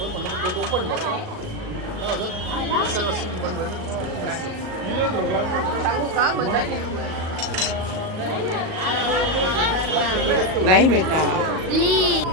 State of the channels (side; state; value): left; late; 38 ms